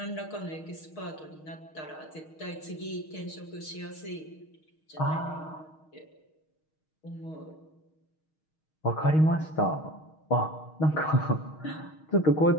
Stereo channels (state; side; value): late; right; 6.4 ms